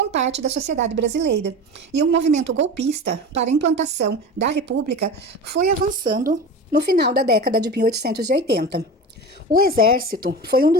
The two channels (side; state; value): both; normal; correlation 0.30